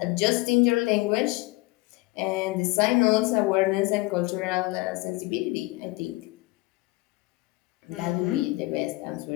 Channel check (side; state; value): right; quieter; 22.2 dB